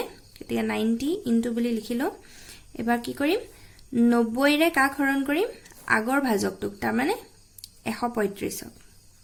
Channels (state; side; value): identical; both; correlation 1.00